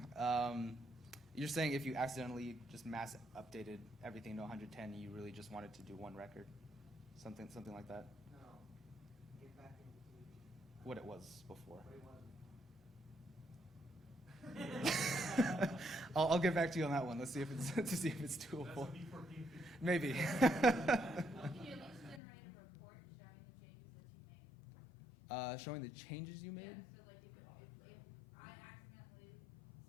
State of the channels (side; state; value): right; drops out; at 22.2 s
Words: You're saying if you accidentally just mass updated everything to 110, you really just wanted to do one record, something like that. No. Get back into What it was before. what it wasn't. I'll get back to you on that one. Let's see if it's to see if it's doable. That's a V14 feature. Maybe. Can you at least generate a report showing the changes that you made? Showing the changes you made. Yeah, so like if I accidentally